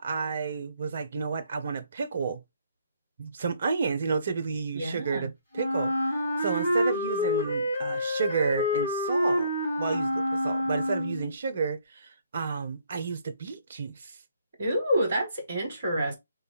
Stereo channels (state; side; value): inverted; both; correlation -0.70